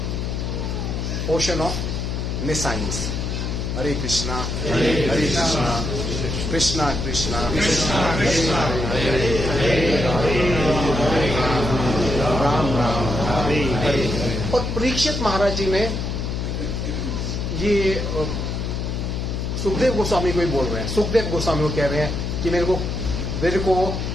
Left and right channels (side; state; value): left; noise; hum, 2 dB below the sound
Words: ocean of nescience. Hare Krishna Hare Krishna, Krishna Krishna Ram Ram Hare Hare. और परीक्षित महाराज जी ने ये सुखदेव गोस्वामी को ही बोल रहे हैं। सुखदेव गोस्वामी को कह रहे हैं कि मेरे को